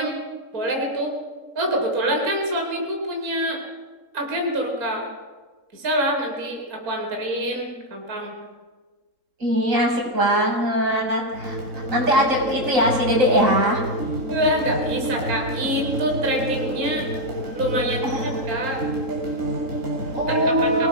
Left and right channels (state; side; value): late; left; 3.7 ms